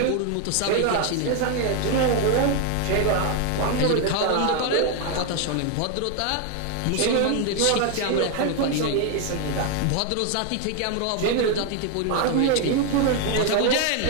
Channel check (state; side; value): different; both; correlation 0.00